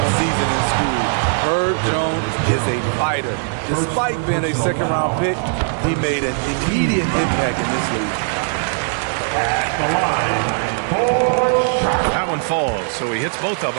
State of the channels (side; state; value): left; silent; digital silence